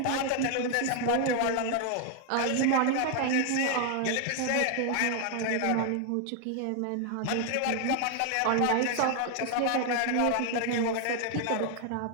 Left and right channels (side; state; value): both; different; correlation 0.00